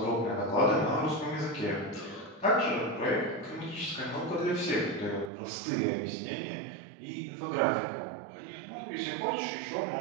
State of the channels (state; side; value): drops out; left; at 5.3 s